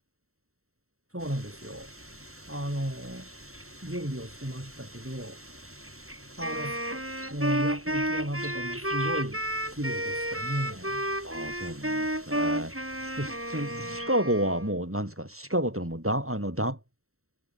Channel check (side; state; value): left; late; 0.63 ms